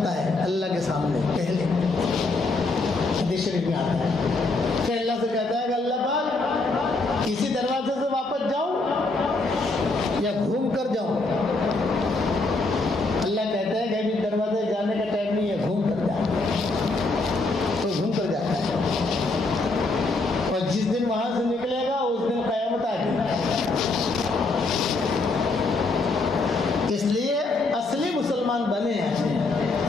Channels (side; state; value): right; quieter; 3.3 dB